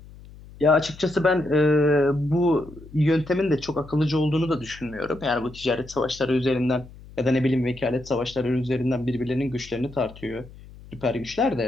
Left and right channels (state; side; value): noise; left; hum, 19 dB below the sound